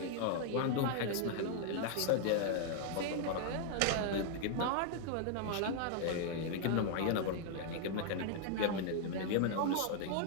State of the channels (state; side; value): different; both; correlation 0.00